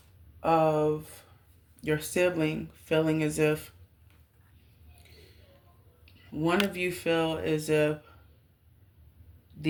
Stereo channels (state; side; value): identical; both; correlation 1.00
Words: of your sibling feeling as if one of you feel as if